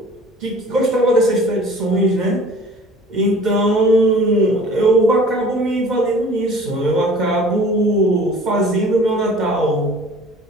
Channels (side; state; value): both; normal; correlation 0.47